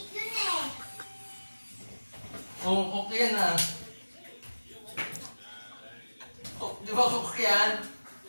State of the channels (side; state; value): both; inverted; correlation -1.00